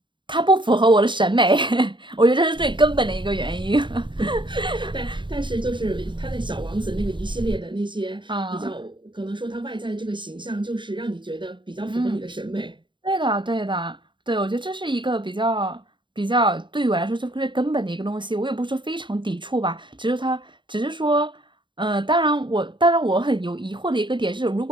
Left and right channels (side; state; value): left; late; 0.23 ms